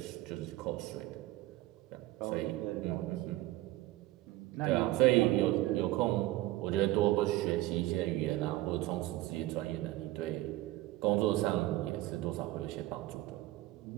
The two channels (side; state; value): left; quieter; 17.3 dB